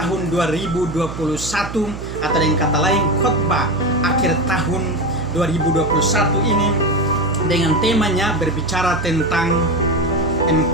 2021, atau dengan kata lain khotbah akhir tahun 2021 ini, dengan temanya berbicara tentang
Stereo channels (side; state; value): right; noise; hum, 10 dB below the sound